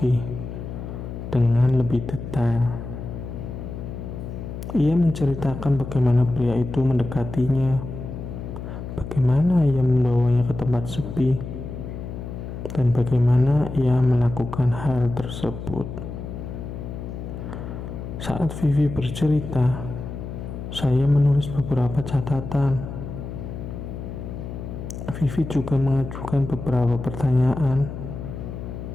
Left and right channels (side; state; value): left; noise; hum, 8 dB below the sound